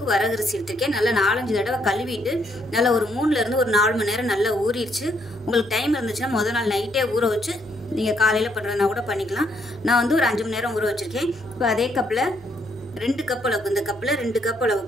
வரகரிசி எடுத்திருக்கேன். நல்லா 4-5 தடவை கழுவிட்டு நல்லா ஒரு 3லேருந்து ஒரு 4 மணி நேரம் நல்லா ஊறிடுச்சு. உங்களுக்கு டைம் இருந்துச்சுன்னா முதல் நாள் நைட்டே ஊற வச்சு நீங்கள் காலையில் பண்ணுறதுனா கூட பண்ணிக்கலாம். நான் வந்து ஒரு 5 மணி நேரம் ஊற வச்சுருக்கேன். இப்போ அதே கப்பில் 2 கப் அளவுக்கு, இந்த கப்பில் 2 கப்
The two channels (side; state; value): both; normal; correlation 0.72